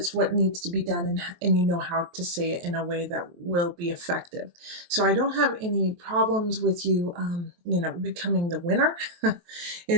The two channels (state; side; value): late; left; 23 ms